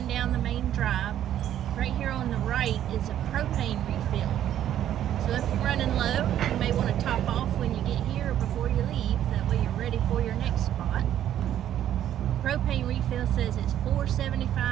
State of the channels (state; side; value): quieter; left; 11.1 dB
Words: down the main drive. Right here on the right is a propane refill. So if you're running low, you may want to top off when you get here or before you leave. That way you're ready for your next spot. Propane refill says it's